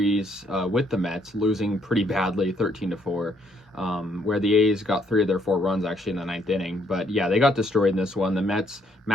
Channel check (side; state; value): both; normal; correlation 0.70